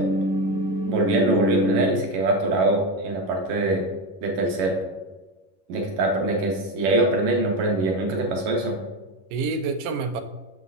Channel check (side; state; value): left; late; 11 ms